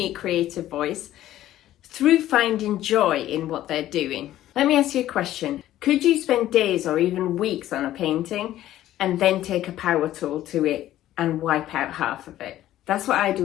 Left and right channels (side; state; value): right; quieter; 13.5 dB